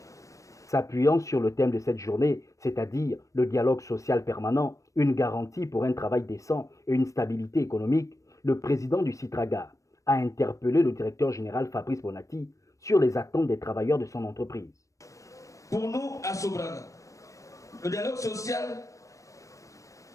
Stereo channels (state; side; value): late; right; 0.16 ms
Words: S'appuyant sur le thème de cette journée, c'est-à-dire le dialogue social permanent, une garantie pour un travail décent et une stabilité économique, le président du Citraga a interpellé le directeur général Fabrice Bonati sur les attentes des travailleurs de son entreprise. Pour nous, à Sobraga, le dialogue social